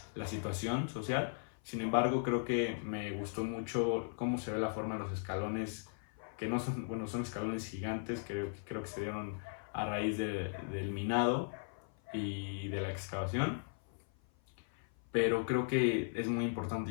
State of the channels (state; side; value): silent; right; 53 dB below the other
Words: la situación social. Sin embargo, creo que me gustó mucho cómo se ve la forma de los escalones, que no son, bueno, son escalones gigantes, que creo que se dieron a raíz del minado y de la excavación, pero creo que es muy